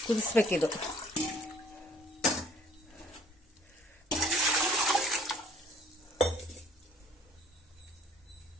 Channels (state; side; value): normal; both; correlation 0.57